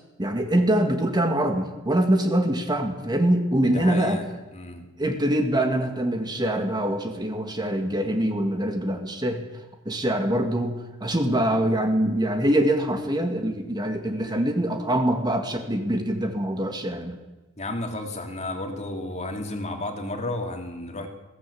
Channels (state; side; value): normal; both; correlation 0.72